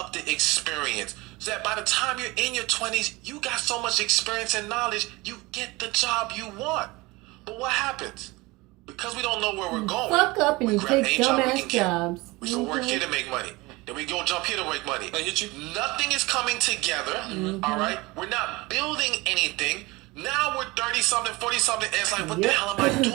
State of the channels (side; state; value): left; quieter; 22.6 dB